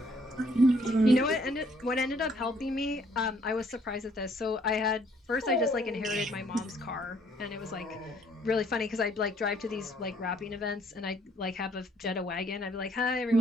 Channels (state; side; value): normal; both; correlation 0.64